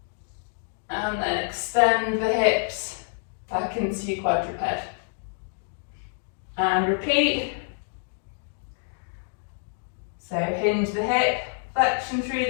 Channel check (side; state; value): right; silent; digital silence